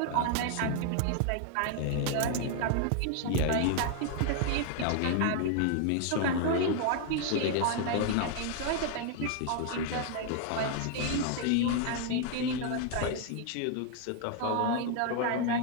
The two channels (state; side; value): different; both; correlation 0.00